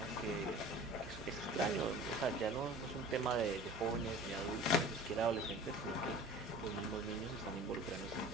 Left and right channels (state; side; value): noise; right; hum, 16 dB below the sound